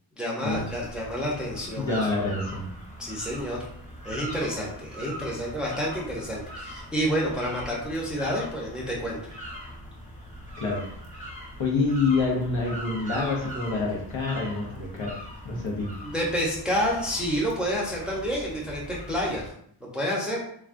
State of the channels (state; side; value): normal; both; correlation 0.36